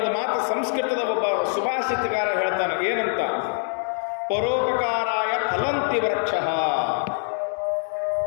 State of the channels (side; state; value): right; silent; digital silence